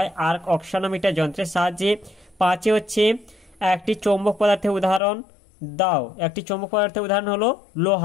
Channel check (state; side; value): drops out; right; at 5.0 s